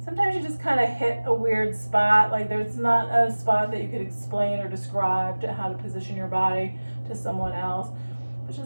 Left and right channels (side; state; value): both; inverted; correlation -1.00